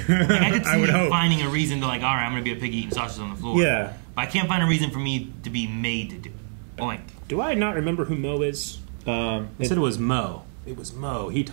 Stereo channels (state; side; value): silent; left; 62 dB below the other